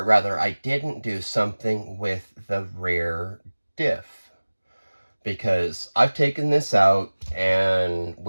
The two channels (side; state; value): both; inverted; correlation -1.00